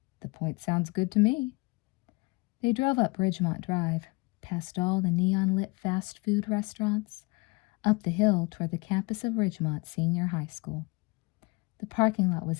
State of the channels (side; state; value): right; quieter; 26.4 dB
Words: "The point sounds good to me." They drove up Ridgemont Drive, past all the neon-lit fast food restaurants, up the hill toward the campus of Ridgemont Senior High School. The parking lot